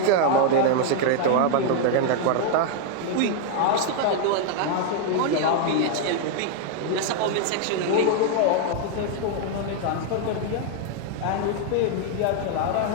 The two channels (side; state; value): both; different; correlation 0.00